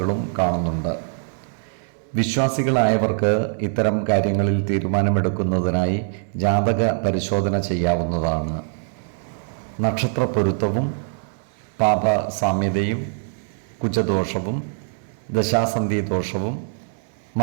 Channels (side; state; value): left; silent; digital silence